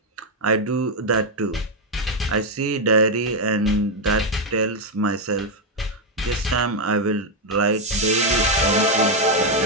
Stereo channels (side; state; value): both; normal; correlation 0.02